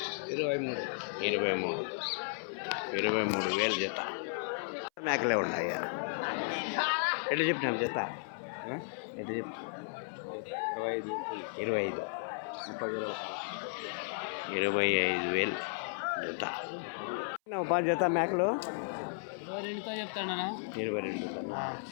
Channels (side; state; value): right; silent; 55 dB below the other